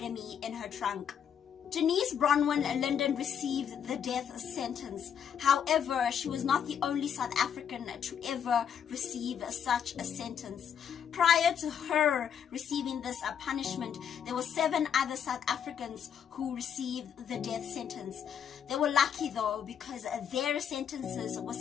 in her trunk. Janice Bronwyn Linden received the death sentence. However, she was not the only South African to ever receive such a sentence. Prior to her receiving this punishment, there were 7 other South Africans who received the death sentence. They were lucky though, because their sentences were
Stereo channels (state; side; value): quieter; right; 8.3 dB